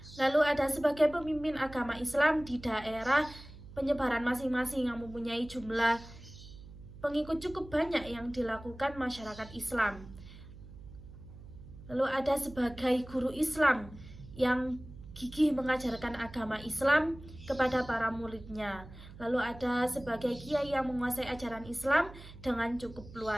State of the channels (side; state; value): right; noise; hum, 17 dB below the sound